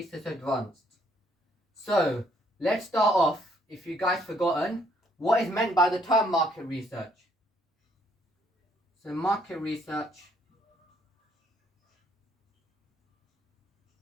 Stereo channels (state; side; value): normal; both; correlation 0.67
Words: advanced. So let's start off. If you guys forgotten, what is meant by the term market research? So market research